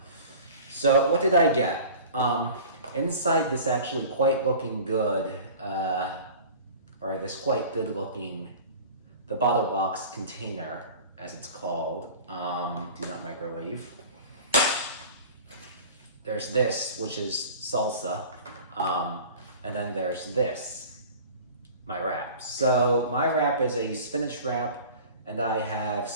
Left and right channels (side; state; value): both; inverted; correlation -0.41